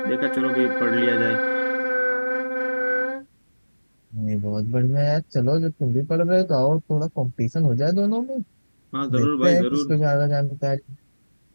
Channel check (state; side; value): inverted; both; correlation -1.00